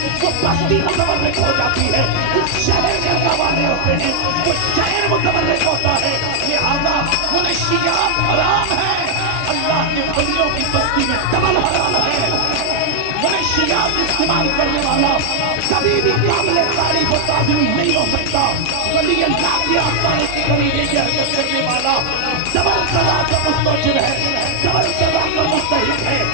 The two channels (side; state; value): both; different; correlation 0.00